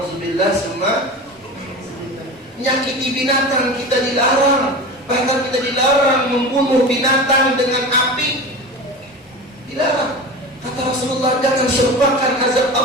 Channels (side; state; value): both; normal; correlation 0.30